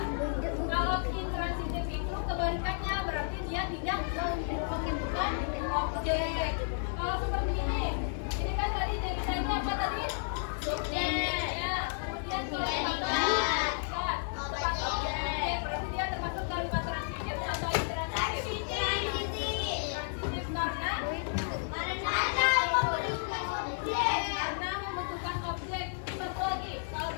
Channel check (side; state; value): right; silent; 56 dB below the other